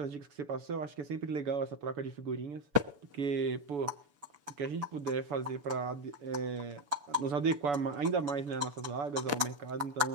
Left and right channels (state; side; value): late; left; 7.0 ms